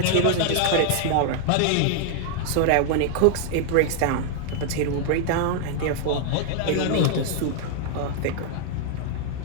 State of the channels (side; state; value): both; different; correlation 0.00